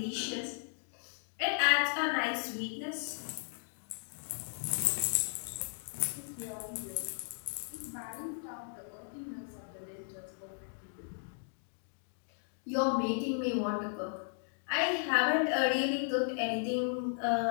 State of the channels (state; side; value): silent; right; digital silence